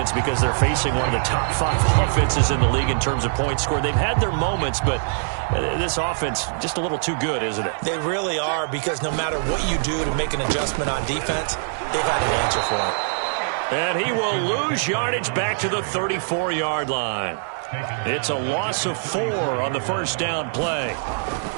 because they're facing one of the top 5 offenses in the league in terms of points scored. They've had their moments, but this offense just a little too good, isn't it? They really are, because no matter what you do to make an adjustment on defense, they've had an answer for it. And he will lose yardage back to the 34-yard line. It's a loss of 4 on the first down play.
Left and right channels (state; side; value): silent; left; 62 dB below the other